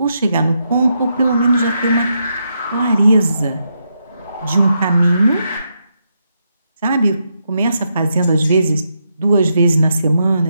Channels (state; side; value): inverted; both; correlation -0.81